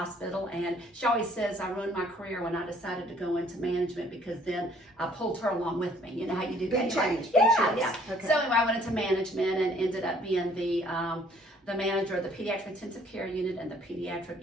and she always says I ruined my career when I decided to go into management because then I pulled her along with me. You know how you do Big that? change. Yeah. Okay. So anyway, I went into management and ended up being the manager of the pediatric intensive care unit and the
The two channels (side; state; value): both; normal; correlation 0.60